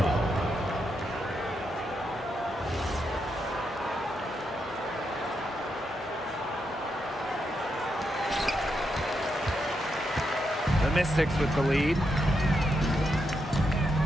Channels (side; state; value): both; normal; correlation 0.82